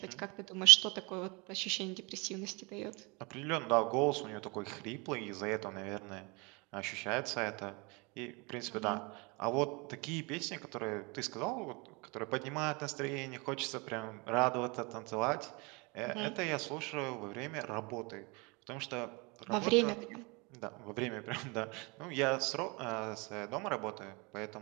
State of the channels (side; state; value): left; quieter; 28.5 dB